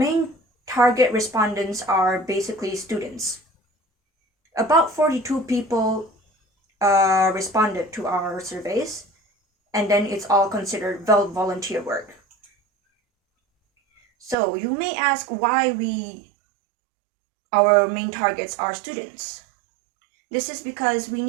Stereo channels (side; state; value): left; drops out; at 14.4 s